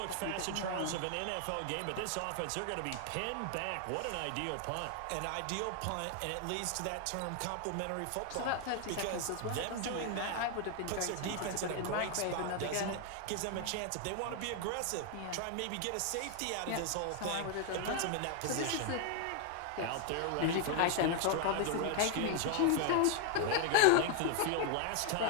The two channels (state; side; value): different; both; correlation 0.00